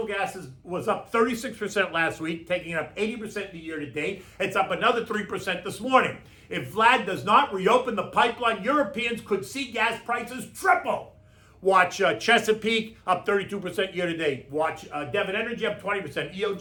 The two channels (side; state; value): both; identical; correlation 1.00